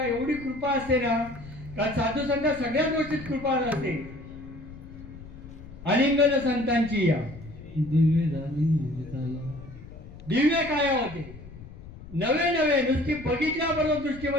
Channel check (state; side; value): noise; left; rumble, 16 dB below the sound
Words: एवढी कृपा असते ना, का साधू संत सगळ्या गोष्टीत कृपा असते. अलिंगन संतांची या दिव्य काय होते, नवे नवे नुसती बघितल्याबरोबर